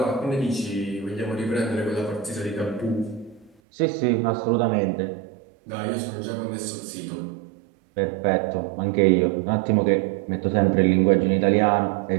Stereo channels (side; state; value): left; drops out; at 3.5 s